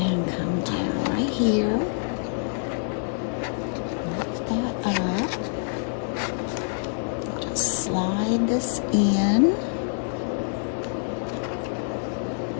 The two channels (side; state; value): right; silent; 61 dB below the other